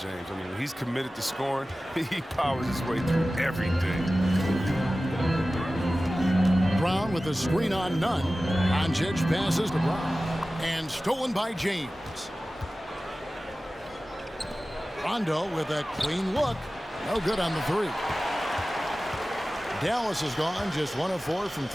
I mean, when he's committed to scoring, he powers his way through everything. Brown with a screen on Nunn. Doncic passes to Brown. And stolen by James. Rondo with a clean look. No good on the 3. Dallas has gone just 1 of 4 from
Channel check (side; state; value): both; normal; correlation 0.96